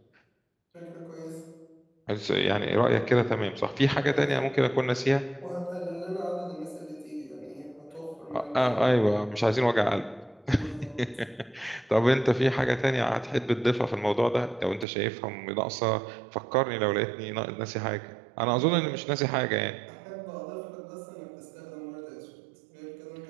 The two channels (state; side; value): drops out; left; at 14.9 s